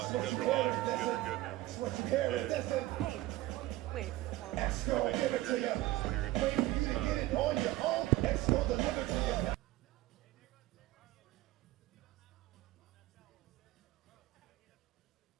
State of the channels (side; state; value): left; quieter; 16.9 dB